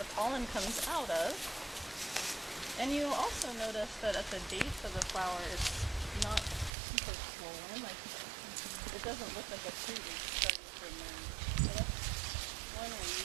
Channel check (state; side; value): drops out; left; at 6.7 s